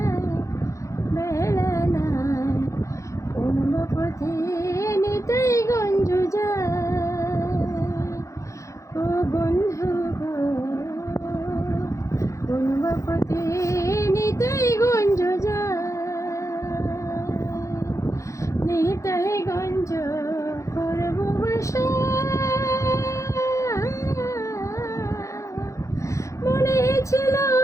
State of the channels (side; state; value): right; late; 0.15 ms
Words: বেলা নাই। কোন পথে নিতাই গঞ্জ যায়, ও বন্ধু গো, কোন পথে নিতাই গঞ্জ যায়, নিতাই গঞ্জ করব বাসা। মনে ছিল